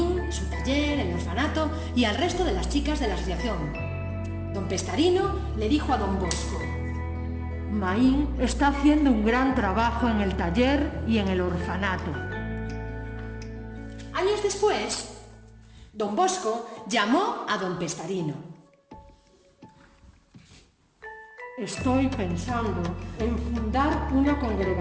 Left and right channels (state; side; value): identical; both; correlation 1.00